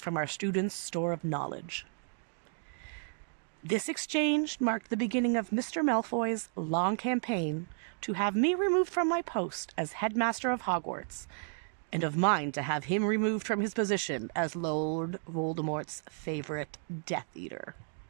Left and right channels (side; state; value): left; silent; 56 dB below the other